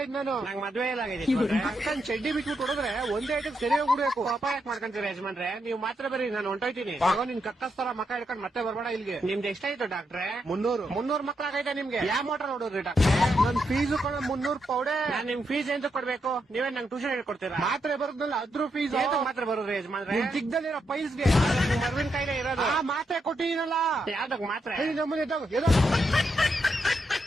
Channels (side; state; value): both; normal; correlation 0.82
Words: ನಾನು. ನಂಗೆ ಮದ್ವೆ ಇಲ್ಲ ಆಗೈತೆ. ಅಕ್ಕನ್ ಚಡ್ಡಿ ಬಿಟ್ಬಿಟ್ಟು ಹೊಡೆದ್ರೆ ಒಂದೇ ಐಟಕ್ ಸರಿ ಹೋಗ್ಬಿಡ್ಬೇಕು. ಕೋಪ ಯಾಕೆ ಮಾಡ್ಕೊಂತೀರ ಯಜಮಾನ್ರೆ? ನೀವು ಮಾತ್ರ ಬರ್ರಿ, ನಾನು ಹೊಂಟೋಯ್ತೀನಿ. ಆಗ ನಿನ್ ಕಕ್ಕಸ್ತರ ಮಕ್ಕ ಹಿಡ್ಕೊಂಡ್ ಮತ್ತೆ ಬರ್ಬೇಡ ಇಲ್ಲಿಗೆ. ನಿಮ್ದು ಎಷ್ಟಾಯ್ತು ಡಾಕ್ಟ್ರೇ? 300 ಮಕ್ಳಾಗೈತೆ ನಿಮ್ಗೆ? ಯಾವ ಮೋಟರ್ ನೋಡಿದ್ರಿ ಡಾಕ್ಟ್ರೆ? ನನ್ ಫೀಸು ಕೂಡ 300 ಪೌಡೆ. ನಾನ್ ನಿಮ್ ಫೀಸ್ ಎಂತ ಕೊಡ್ಬೇಕು? ನೀವೇ ನಂಗೆ ಟ್ಯೂಷನ್ ಹೇಳ್ಕೊಡ್ತೀರಾ? ಮಾತ್ರೆ ಬರೋದ್ನಲ್ಲ ಅದ್ರ ಫೀಸ್ ಮಾತ್ರ ಬರೋದ್ರಿ ಯಜಮಾನ್ರೆ? ನಿಮ್ ಚಿಕ್ಕದಲ್ಲಿರೋ ಪೈಲ್ಸ್ಗೆ ಮರ್ವಿನ ಕಾಯಿಲೆ ಇರೋದು. ಆ ಮಾತ್ರೆ ಕೊಟ್ಟಿನಲ್ಲ. ಯಾವ್ದಕ್ ಮಾತ್ರ? ನಮ್ಮನೆ